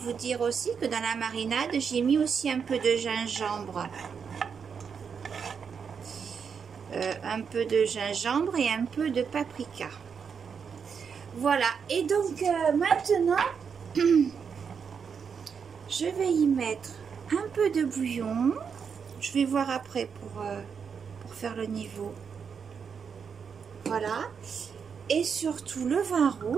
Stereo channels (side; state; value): left; quieter; 6.5 dB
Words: dire aussi que dans la marinade, j'ai mis aussi un peu de gingembre. Un peu de gingembre et un peu de paprika. Voilà, et donc maintenant, je vais y mettre un peu de bouillon. Je vais voir après pour faire le niveau. Voilà, et surtout le vin